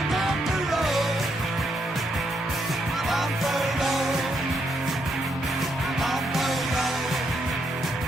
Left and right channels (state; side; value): normal; both; correlation 0.77